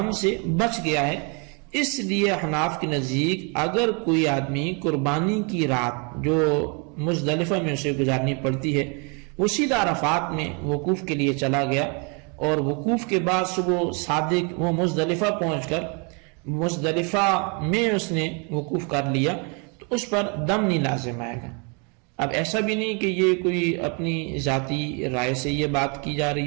سے بچ گیا ہے۔ اس لیے حناف کے نزدیک اگر کوئی آدمی قربانی کی رات جو مزدلفہ میں اسے گزارنی پڑتی ہے وہ سیدھا عرفات میں وقوف کے لیے چلا گیا اور وقوف کے بعد صبح صادق وہ مزدلفہ پہنچ کر مزدلفہ میں اس نے وقوف کر لیا تو اس پر دم نہیں لازم آئے گا۔ اب ایسا بھی نہیں کہ یہ کوئی اپنی ذاتی رائے سے یہ بات کی جا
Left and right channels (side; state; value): left; quieter; 34.5 dB